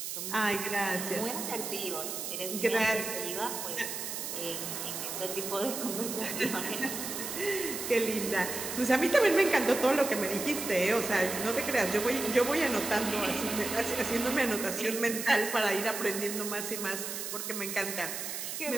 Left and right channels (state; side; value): noise; right; hiss, 5 dB below the sound